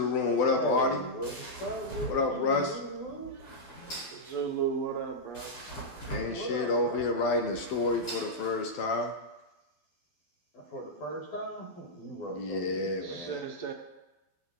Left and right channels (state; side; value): late; right; 12 ms